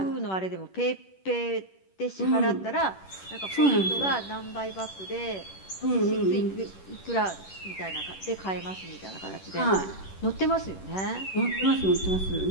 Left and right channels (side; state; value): right; late; 10 ms